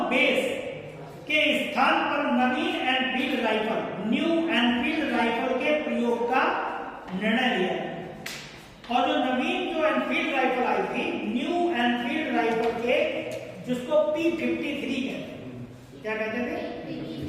बेस के स्थान पर नवीन Enfield rifle, new Enfield rifle के प्रयोग का निर्णय लिया। और जो नवीन जो एनफील्ड राइफल आई थी, न्यू एनफील्ड राइफल के, जिसको P53 कहते हैं, क्या कहते थे?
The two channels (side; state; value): both; identical; correlation 1.00